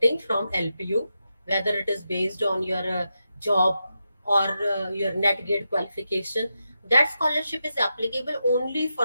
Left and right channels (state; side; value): inverted; both; correlation -0.87